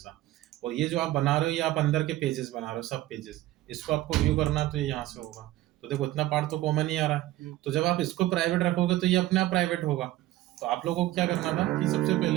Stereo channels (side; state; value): left; quieter; 15.8 dB